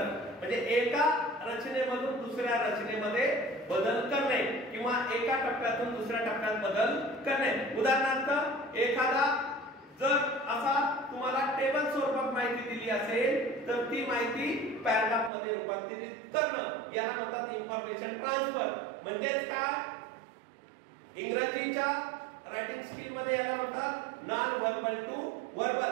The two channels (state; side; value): drops out; left; at 15.3 s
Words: म्हणजे एका रचनेमधून दुसऱ्या रचनेमध्ये बदल करणे किंवा एका टप्प्यातून दुसऱ्या टप्प्यात बदल करणे. उदाहरणार्थ एखादा जर असा तुम्हाला टेबल स्वरूपात माहिती दिली असेल तर ती माहिती पॅराग्राफ मध्ये रूपांतरित करणं याला म्हणतात इन्फॉर्मेशन ट्रान्सफर. म्हणजेच काय? इंग्रजीच्या रायटिंग स्किल मध्ये याला म्हणतात non verbal to